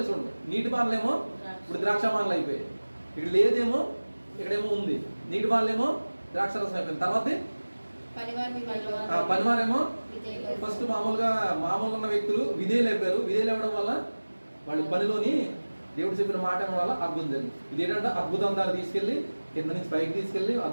చూడండి. నీటి బాన్లేమో ఇప్పుడు ద్రాక్ష బాన్లు అయిపోయాయి. ఇక్కడ లేదేమో, ఇక్కడేమో ఉంది. నీటి బాన్లేమో ద్రాక్షరసం అయిపోయింది. తర్వాత పనివారేమో ఫస్ట్ మామూలుగా ఉన్న వ్యక్తులు విధేయులు అయిపోయారు. విధేయులు అవ్వడం వల్ల వాళ్ళు పనిలోని దేవుడు చెప్పిన మాట వల్ల అద్భుతం జరిగింది. ఇదేంటంటే అద్భుతం దాన్ని తీసుకెళ్ళి కింద నుంచి పైకి తీసుకెళ్ళి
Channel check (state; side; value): inverted; both; correlation -1.00